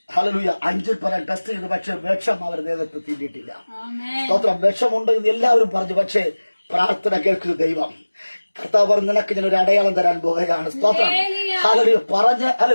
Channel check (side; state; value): both; inverted; correlation -1.00